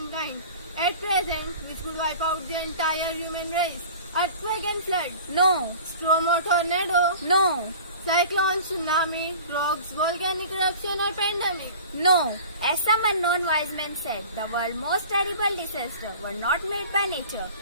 at present which could wipe out the entire human race? Earthquake and flood. No. Storm or tornado. No. Cyclone, tsunami, droughts, volcanic eruption or pandemic. No. As some unknown wise men said, the world's most terrible disasters were not made by nature.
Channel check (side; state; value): both; inverted; correlation -0.41